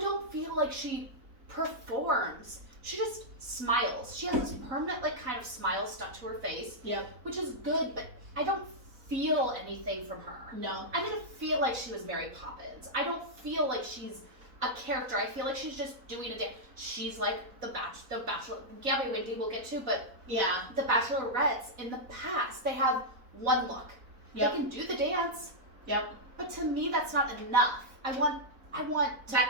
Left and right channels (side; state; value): left; late; 4.0 ms